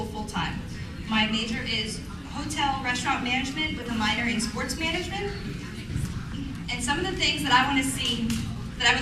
full-time. My major is hotel restaurant management with a minor in sports management. And some of the things that I want to see that I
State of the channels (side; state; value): both; identical; correlation 1.00